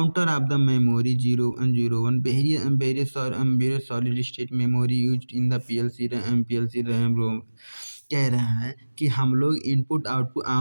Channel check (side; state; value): both; inverted; correlation -1.00